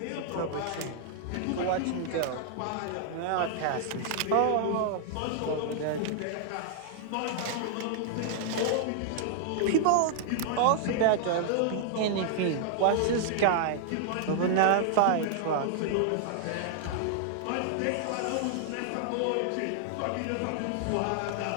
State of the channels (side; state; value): both; different; correlation -0.01